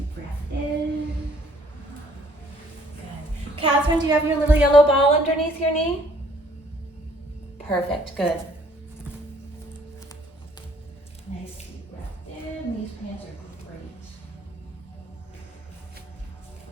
breath in. Good. Catherine, do you have your little yellow ball underneath your knee? Perfect, good. Nice deep breath in. These pants are great.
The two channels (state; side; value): normal; both; correlation 0.61